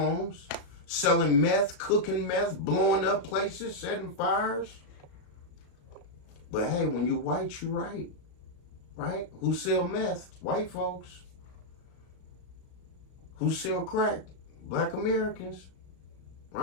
selling meth, cooking meth, blowing up places, setting fires. But hey, when you white, you right. Right? Who sell meth? White folks. Who sell crack? Black Americans.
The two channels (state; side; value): late; right; 35 ms